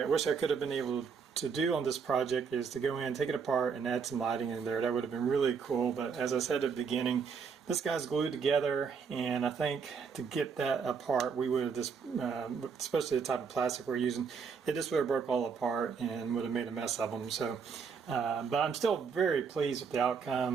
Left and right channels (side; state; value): left; quieter; 6.0 dB